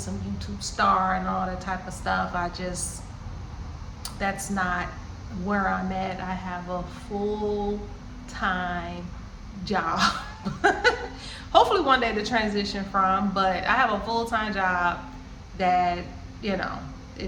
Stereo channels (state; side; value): identical; both; correlation 1.00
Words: YouTube star and all that type of stuff. That's not where I'm at. I have a full-time job. Hopefully one day to transition from, but I have a full-time job that,